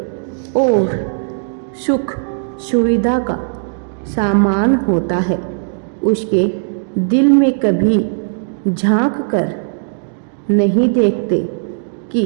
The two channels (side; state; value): left; silent; digital silence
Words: और सुख सुविधा का सामान होता है। उसके दिल में कभी झांक कर नहीं देखते कि